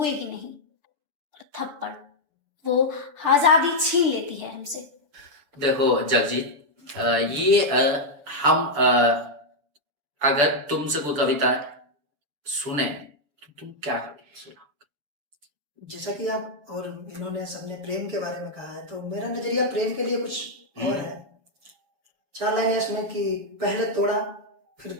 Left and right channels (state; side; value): late; left; 7.0 ms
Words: ही नहीं। और थप्पड़ वो आजादी छीन लेती है हमसे। देखो जगजीत, ये हम अगर तुमसे कोई कविता सुने तो तुम क्या कविता सुनाओगे? जैसा कि आप और इन्होंने सबने प्रेम के बारे में कहा है, तो मेरा नजरिया प्रेम के लिए कुछ और है। 4 लाइनें इसमें कि पहले तोड़ा फिर